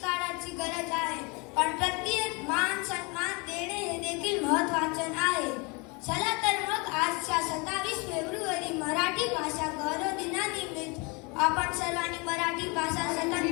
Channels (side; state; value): right; quieter; 29.1 dB